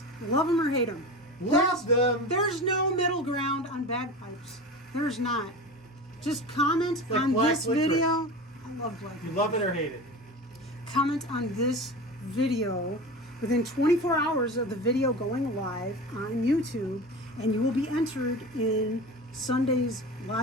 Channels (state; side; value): normal; both; correlation 0.30